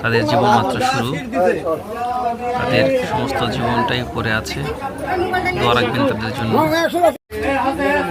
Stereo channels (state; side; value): identical; both; correlation 1.00